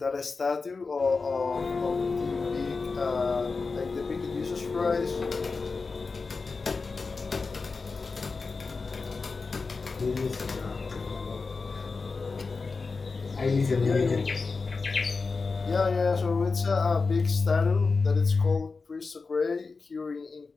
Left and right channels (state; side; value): quieter; right; 4.3 dB